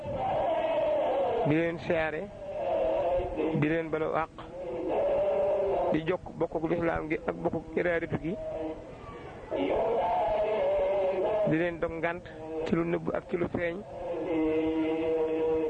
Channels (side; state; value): both; identical; correlation 1.00